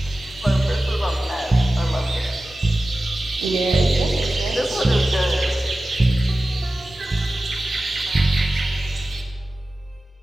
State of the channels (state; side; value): normal; both; correlation 0.95